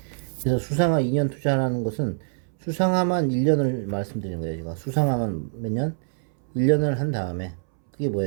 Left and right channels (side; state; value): left; silent; 62 dB below the other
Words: 그래서 수상화 2년 투자하는 것은 수상화만 1년을 말씀드리는 거예요. 제가 수상화만 몇 년? 1년을 한 다음에 그게